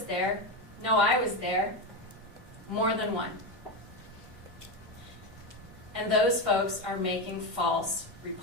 there. No, I was there. More than one. And those folks are making false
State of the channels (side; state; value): both; normal; correlation 0.14